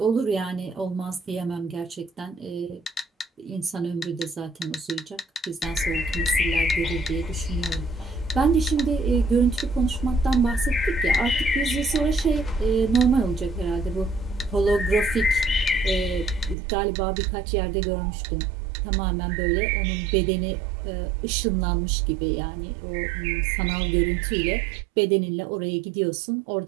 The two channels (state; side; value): drops out; left; at 16.6 s